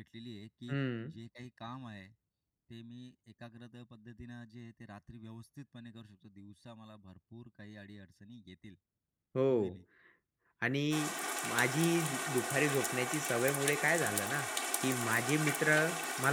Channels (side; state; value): both; identical; correlation 1.00